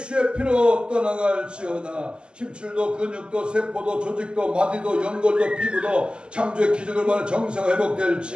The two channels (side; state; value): left; late; 0.049 ms